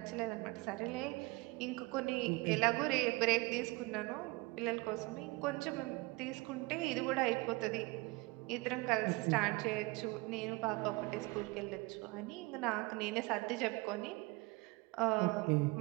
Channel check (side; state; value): left; quieter; 24.2 dB